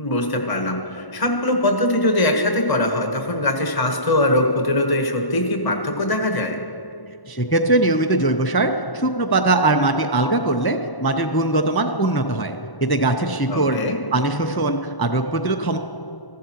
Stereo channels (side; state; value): right; late; 1.0 ms